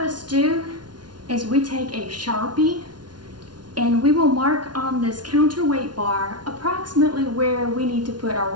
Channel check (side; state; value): left; late; 0.70 ms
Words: do is we take a Sharpie and we will mark on this counterweight bar approximately where we need to put our